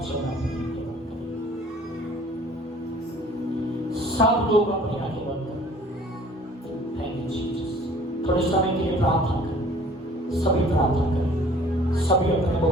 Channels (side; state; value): both; normal; correlation 0.52